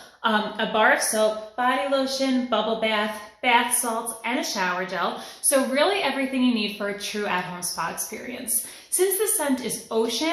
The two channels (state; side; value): identical; both; correlation 1.00